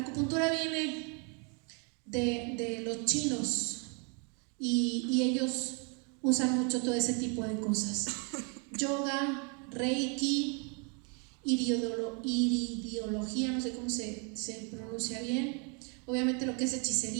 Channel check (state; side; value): quieter; left; 36.0 dB